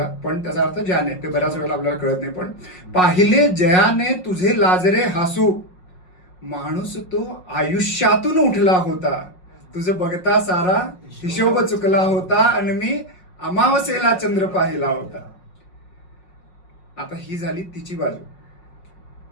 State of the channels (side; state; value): right; late; 5.5 ms